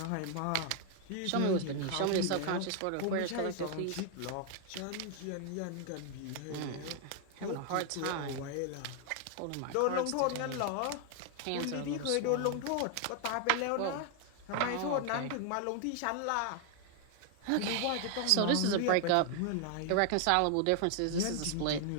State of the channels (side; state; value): both; different; correlation 0.00